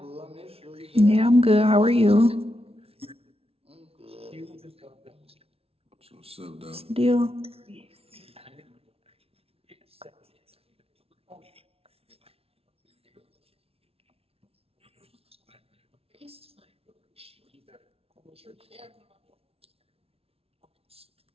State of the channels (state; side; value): late; left; 0.28 ms